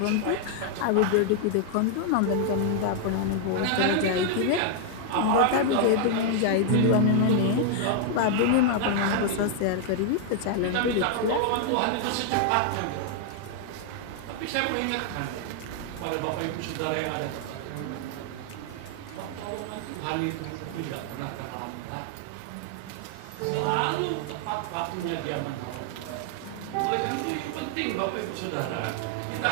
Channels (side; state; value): both; different; correlation 0.00